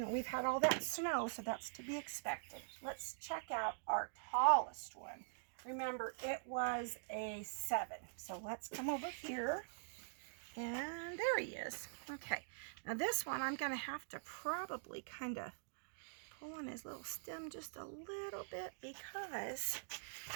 we've had all that snow, so that's to be expected. Let's check out our tallest one. Remember, it was a 7. So let's come over here. And there he is. Okay. Now this one, I'm going to have to probably kind of pull on his little stem just a little bit because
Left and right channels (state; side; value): silent; left; digital silence